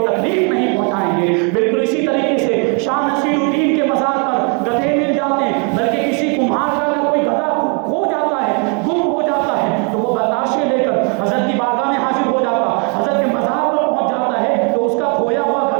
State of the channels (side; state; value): left; quieter; 36.0 dB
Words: تکلیف نہیں پہنچائیں گے۔ بالکل اسی طریقے سے شاہ نصیر الدین کے مزار پر گدھے مل جاتے ہیں، بلکہ کسی کمہار کا اگر کوئی گدھا کھو جاتا ہے، گم ہو جاتا ہے تو وہ بتاشے لے کر حضرت کی بارگاہ میں حاضر ہو جاتا، حضرت کے مزار پر پہنچ جاتا ہے تو اس کا کھویا ہوا